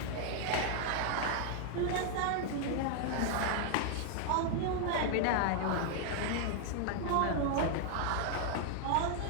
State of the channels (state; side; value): different; both; correlation 0.00